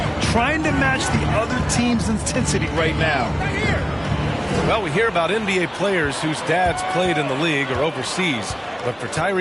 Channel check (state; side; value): identical; both; correlation 1.00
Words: Trying to match the other team's intensity right now. Well, we hear about NBA players whose dads played in the league or overseas. But for